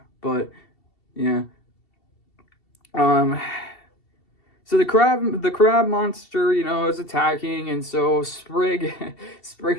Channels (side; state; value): right; late; 2.7 ms